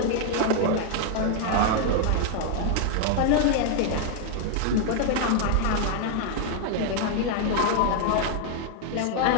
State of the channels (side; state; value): both; different; correlation 0.00